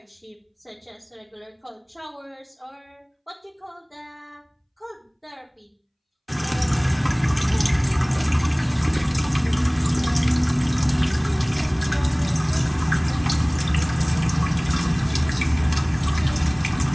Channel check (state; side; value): identical; both; correlation 1.00